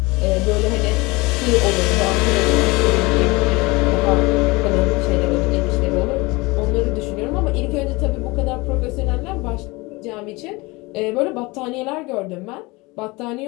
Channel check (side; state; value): right; quieter; 24.0 dB